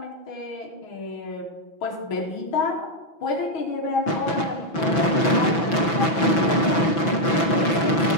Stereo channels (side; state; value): right; late; 6.0 ms